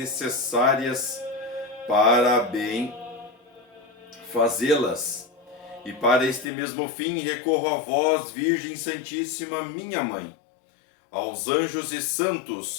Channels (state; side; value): drops out; right; at 6.5 s